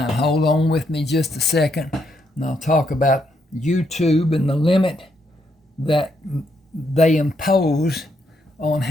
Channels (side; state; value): both; normal; correlation 0.76